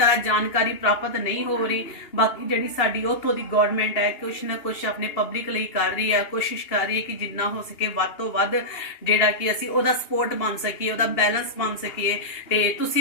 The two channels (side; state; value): right; late; 2.8 ms